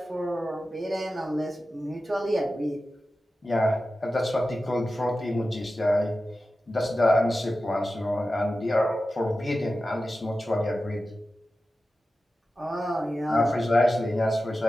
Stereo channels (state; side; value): normal; both; correlation 0.93